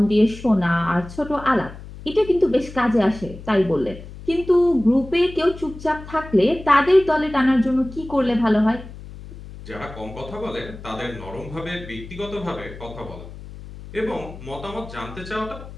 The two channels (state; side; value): noise; left; hum, 14 dB below the sound